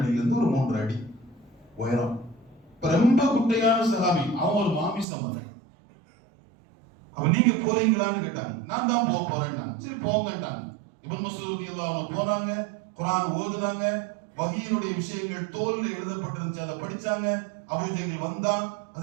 ஒரு 3 அடி உயரம். ரொம்ப குட்டையான சஹாபி. அவன் ஒரு மாமிசம். அப்ப நீங்க போறீங்களான்னு கேட்டாங்க. நான் தான் போறேன். சரி போங்கட்டாங்க. இப்னு மஸ்ஊத் ரலியல்லாஹு அன்ஹு போனாங்க. குர்ஆன் ஓதுனாங்க. வஹீனுடைய விஷயங்கள் தோல்ல எழுதப்பட்டிருந்துச்சு, அதை படிச்சாங்க. அபூஜஹல் வந்தான்.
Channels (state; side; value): drops out; left; at 5.1 s